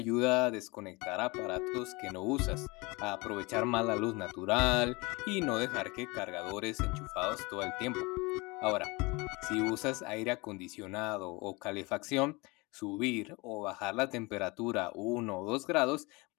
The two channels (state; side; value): quieter; right; 25.6 dB